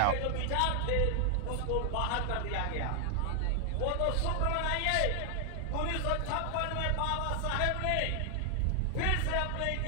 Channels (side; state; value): both; different; correlation 0.00